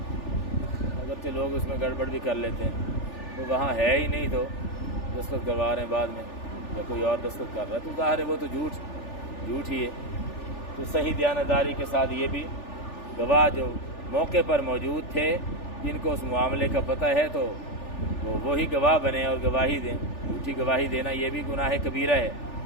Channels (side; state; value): right; late; 3.4 ms